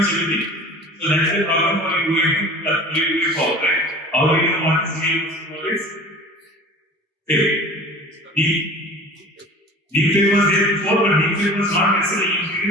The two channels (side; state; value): both; normal; correlation 0.41